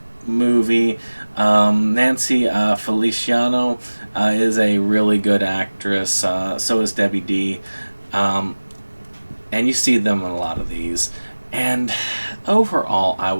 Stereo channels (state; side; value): inverted; both; correlation -1.00